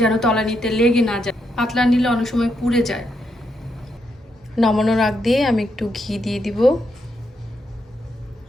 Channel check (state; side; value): normal; both; correlation 0.80